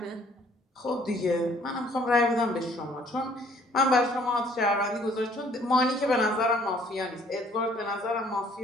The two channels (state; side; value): normal; both; correlation 0.60